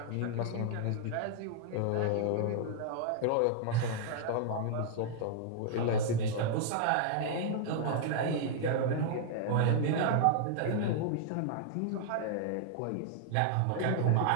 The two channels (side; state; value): both; different; correlation -0.01